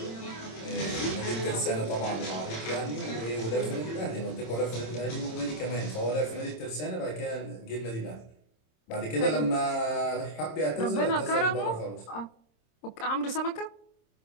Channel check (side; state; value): right; late; 26 ms